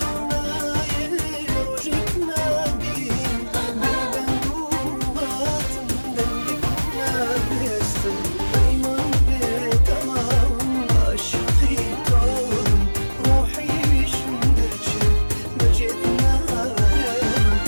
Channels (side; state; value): both; inverted; correlation -1.00